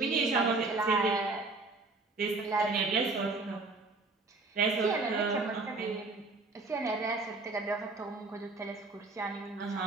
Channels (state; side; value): quieter; left; 3.6 dB